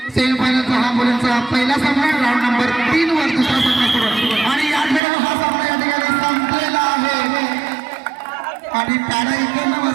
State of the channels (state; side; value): drops out; left; at 5.0 s